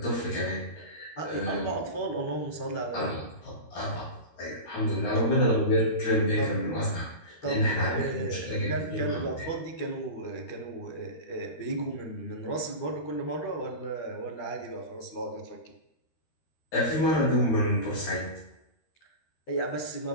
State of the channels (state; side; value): late; right; 13 ms